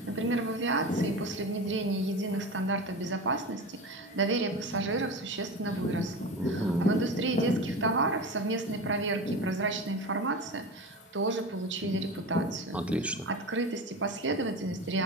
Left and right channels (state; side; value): normal; both; correlation 0.27